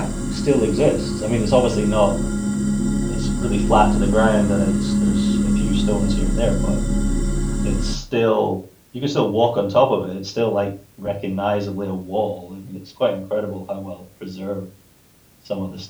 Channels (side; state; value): both; identical; correlation 1.00